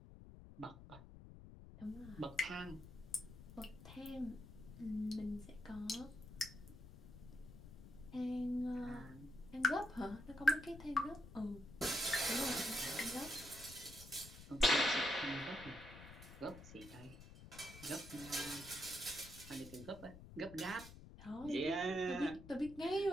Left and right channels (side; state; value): left; noise; rumble, 15 dB below the sound